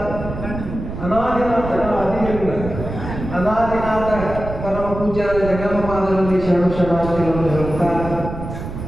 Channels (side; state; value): right; noise; rumble, 8 dB below the sound